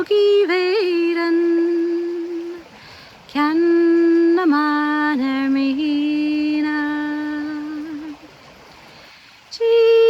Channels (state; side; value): identical; both; correlation 1.00